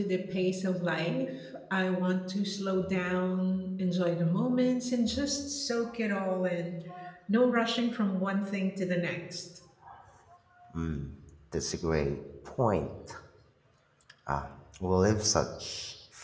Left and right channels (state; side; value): identical; both; correlation 1.00